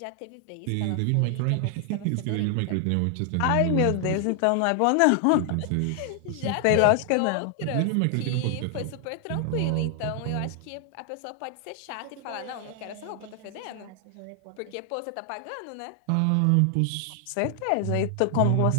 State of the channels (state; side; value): different; both; correlation 0.00